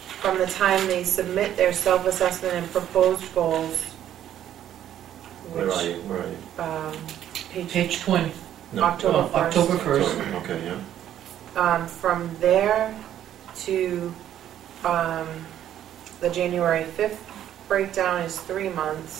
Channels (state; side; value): quieter; left; 11.1 dB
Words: from the time they submit their self-assessment and proposed goals, Where are which, you? Where are you? Page 20. No. October Oh, October 1st. Okay, yeah. From there to the January 5th breakdown is 3